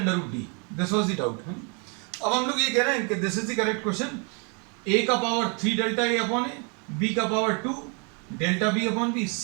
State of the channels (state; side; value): quieter; left; 35.1 dB